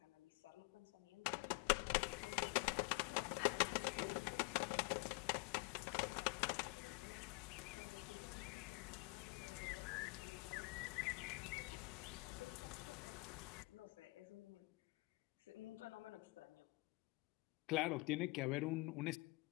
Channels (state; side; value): quieter; right; 26.5 dB